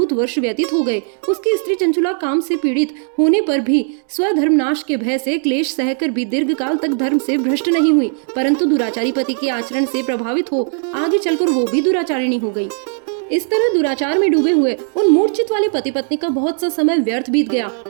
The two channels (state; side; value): silent; left; 55 dB below the other